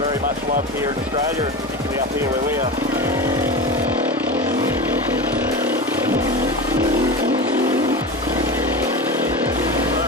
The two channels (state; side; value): normal; both; correlation 0.25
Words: much loved here in Australia, and particularly up here where we are.